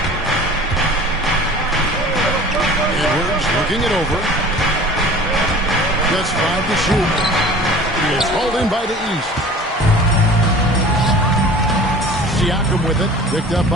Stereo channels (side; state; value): both; normal; correlation 0.43